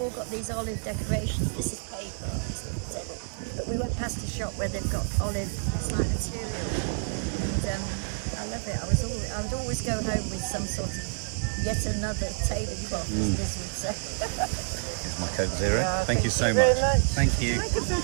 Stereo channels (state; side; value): silent; left; digital silence